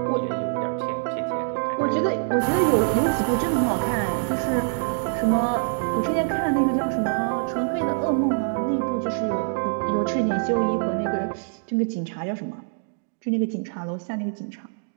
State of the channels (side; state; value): left; silent; digital silence